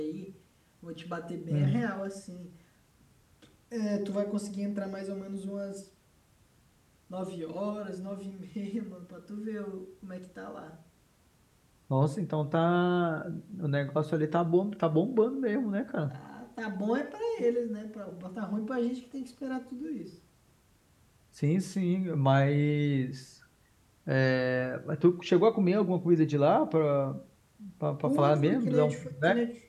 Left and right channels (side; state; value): both; identical; correlation 1.00